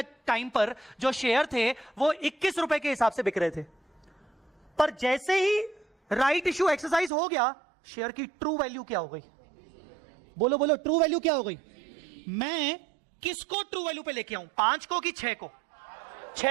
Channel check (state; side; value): drops out; left; at 7.1 s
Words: टाइम पर जो शेयर थे वो 21 रुपए के हिसाब से बिक रहे थे। पर जैसे ही राइट इशू एक्सरसाइज हो गया शेयर की ट्रू वैल्यू क्या हो गई? बोलो बोलो, ट्रू वैल्यू क्या हो गई? मैं किसको ट्रू वैल्यू पे लेके आऊं? 5 को कि 6 को?